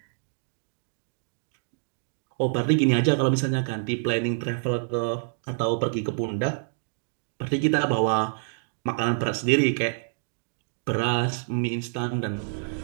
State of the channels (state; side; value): silent; left; digital silence